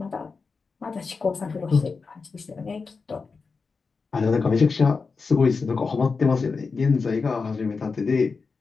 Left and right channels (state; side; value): quieter; right; 4.7 dB